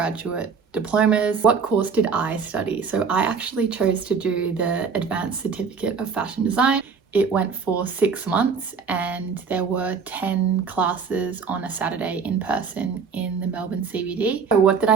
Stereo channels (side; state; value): left; quieter; 5.7 dB